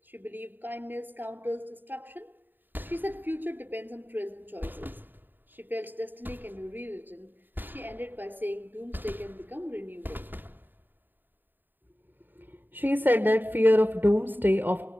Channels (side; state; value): left; late; 0.092 ms